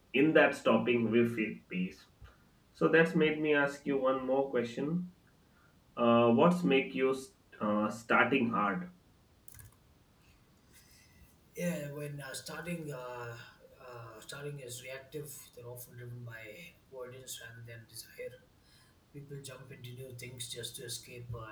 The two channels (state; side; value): identical; both; correlation 1.00